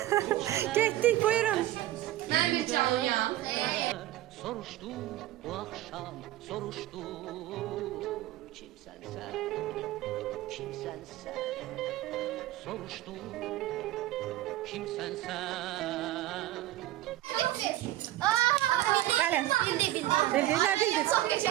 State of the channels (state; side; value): quieter; left; 14.9 dB